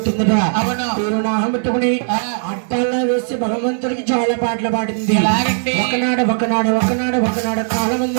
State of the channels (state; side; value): silent; left; digital silence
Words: పేరు నామం పెట్టుకుని అడ్డాల్లో వేసి భగవంతుడికి చాలా పాటలు పాడింది ఒకనాడు ఒకనాడు ఒకనాడు ఒకనాడు కాలం